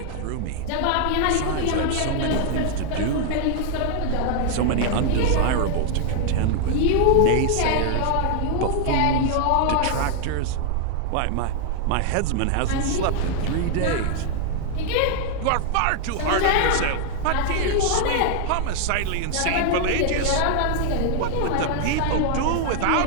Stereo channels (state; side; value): different; both; correlation 0.00